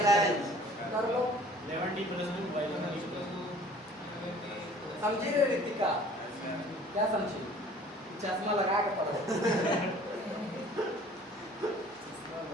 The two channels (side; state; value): both; normal; correlation 0.51